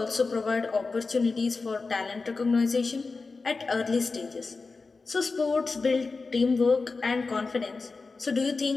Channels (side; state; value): right; quieter; 4.1 dB